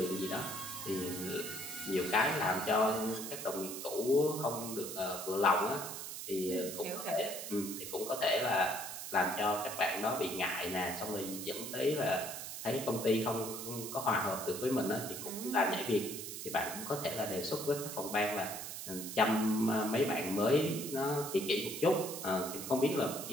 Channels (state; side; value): noise; right; hiss, 7 dB below the sound